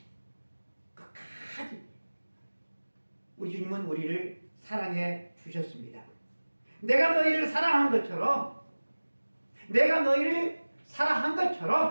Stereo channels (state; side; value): inverted; both; correlation -1.00